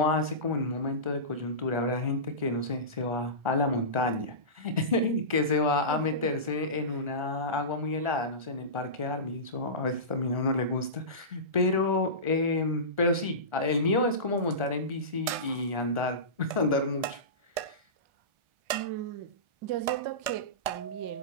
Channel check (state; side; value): late; left; 1.7 ms